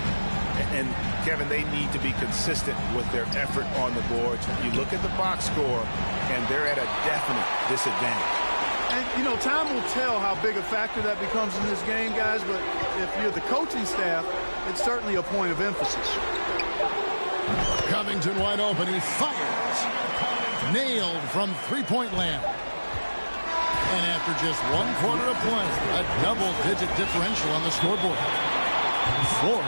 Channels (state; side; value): inverted; both; correlation -1.00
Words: And, Kevin, they need to be consistent with their effort on the boards. You look at the box score, and they're at a definite disadvantage. And, you know, time will tell how big a factor that becomes in this game, guys, but if you're the coaching staff, it's certainly a point of emphasis. Covington wide open. He fires. Nailed from three-point land. And after just 1 quarter of play, a double-digit differential on the scoreboard.